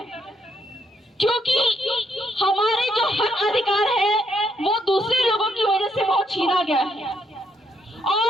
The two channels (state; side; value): normal; both; correlation 0.74